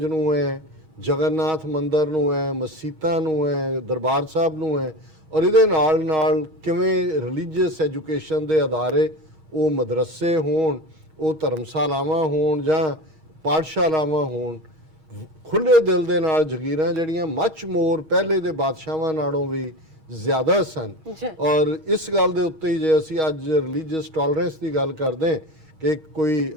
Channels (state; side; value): late; left; 8.6 ms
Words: ਨੂੰ ਹੈ, ਜਗਨਨਾਥ ਮੰਦਰ ਨੂੰ ਹੈ, ਮਸੀਤਾਂ ਨੂੰ ਹੈ, ਦਰਬਾਰ ਸਾਹਿਬ ਨੂੰ ਹੈ, ਔਰ ਇਹਦੇ ਨਾਲ ਨਾਲ ਕਿਵੇਂ ਰਿਲੀਜੀਅਸ ਐਜੂਕੇਸ਼ਨ ਦੇ ਅਦਾਰੇ, ਉਹ ਮਦਰਸੇ ਹੋਣ, ਉਹ ਧਰਮਸ਼ਾਲਾਵਾਂ ਹੋਣ ਜਾਂ ਪਾਠਸ਼ਾਲਾਵਾਂ ਹੋਣ, ਖੁੱਲੇ ਦਿਲ ਦੇ ਨਾਲ ਜਗੀਰਾਂ ਜਿਹੜੀਆਂ ਮੱਚ ਮੋਰ ਪਹਿਲੇ ਦੇ ਬਾਦਸ਼ਾਹਾਂ ਨਾਲੋਂ ਵੀ ਜ਼ਿਆਦਾ ਸਨ। ਔਰ ਇਸ ਗੱਲ ਦੇ ਉੱਤੇ ਹੀ ਜੇ ਅਸੀਂ ਅੱਜ ਰਿਲੀਜੀਅਸ ਟੋਲਰੈਂਸ ਦੀ ਗੱਲ ਕਰਦੇ ਕਿ ਕੋਈ